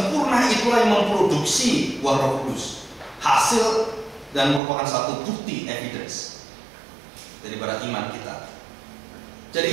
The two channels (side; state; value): left; drops out; at 4.6 s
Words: itulah yang memproduksi buah Roh Kudus, hasil dan merupakan satu bukti, evidence daripada iman kita.